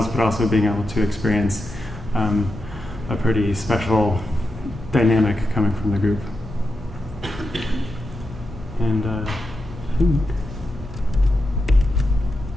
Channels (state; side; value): normal; both; correlation 0.88